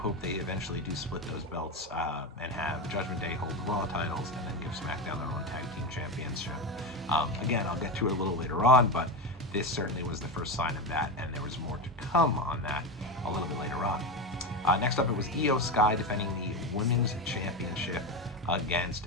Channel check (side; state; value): both; normal; correlation 0.17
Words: they eventually do split those belts and have Judgment Day hold the Raw titles and then give SmackDown their own tag team championship. Again, I'll get to it a little later on, but this certainly was the first sign of that, and there was more to come on that a little bit later on. Next up, it was Io Sky defending the Women's Championship against